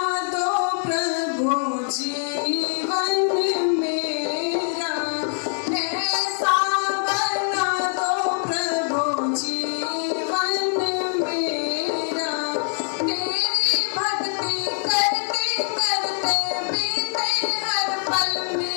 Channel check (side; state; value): right; silent; 62 dB below the other